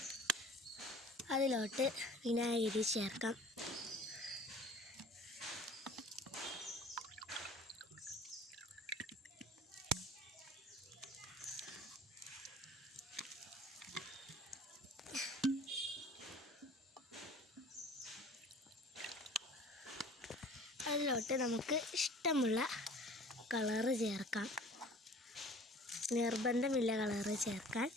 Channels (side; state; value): both; normal; correlation 0.47